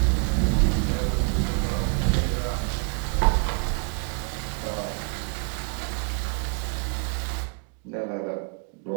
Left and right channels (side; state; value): left; quieter; 39.3 dB